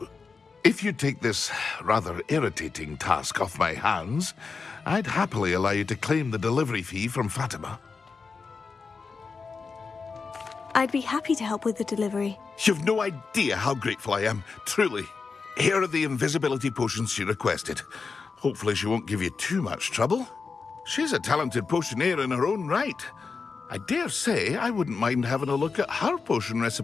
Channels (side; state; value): right; quieter; 4.8 dB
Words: If you take this rather irritating task off my hands, I'd happily allow you to claim the delivery fee from Fatima. I'd be happy to help with the delivery. You've no idea how grateful I am, truly. Here are the invisibility potions she requested. Hopefully she won't give you too much trouble. She's a talented potioneer in her own right. I dare say I wouldn't mind having a look at her potion